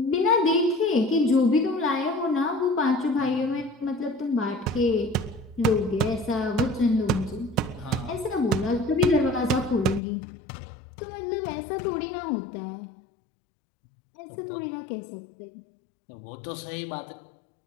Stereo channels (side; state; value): right; drops out; at 10.0 s